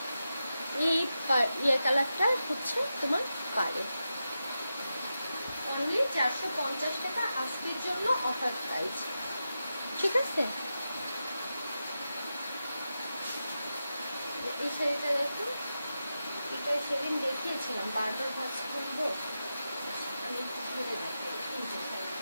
এই কালারটা হচ্ছে তোমার পাড়ে, অনলি 450 টাকা আজকের জন্য অফার প্রাইস। ঠিক আছে, এই শাড়িটা দেখো, এটা সেদিন দেখিয়েছিলাম, বারবার ভাবছি কিনবো, আমি একটু ধরে দেখাই এই যে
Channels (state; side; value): inverted; both; correlation -0.90